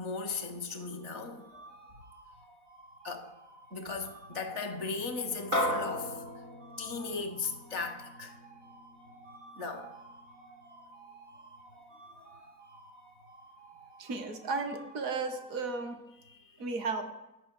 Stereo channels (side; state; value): left; late; 4.1 ms